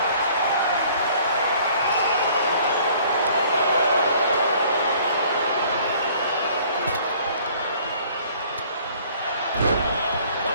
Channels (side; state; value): both; inverted; correlation -0.55